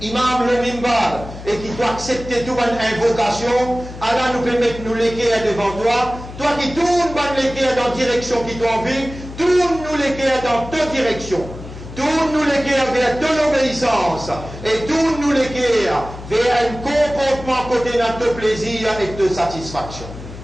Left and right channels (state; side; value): noise; left; hum, 13 dB below the sound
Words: imam le mimbar et qui doit accepter toute une invocation, Allah nous permet de nous léguer devant toi. Toi qui tournes dans la direction qui t'a envie, tourne-nous léguer dans ta direction. Tourne-nous léguer vers de l'obéissance et tourne-nous léguer vers un comportement côté de ton plaisir et de satisfaction.